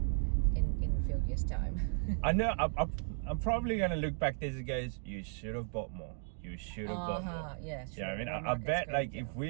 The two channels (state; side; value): silent; left; 54 dB below the other